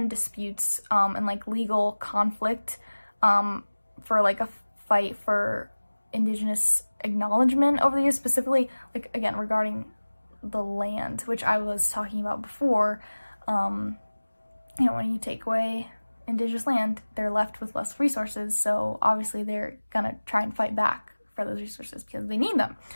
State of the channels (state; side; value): inverted; both; correlation -1.00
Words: disputes and like legal conflict for like a fight for indigenous acknowledgement over the years, specifically like, again, regarding the land, which I was talking about before. You know, when you take away indigenous land, they're left with less resources, so obviously they're gonna try and fight back for those resources because they need them.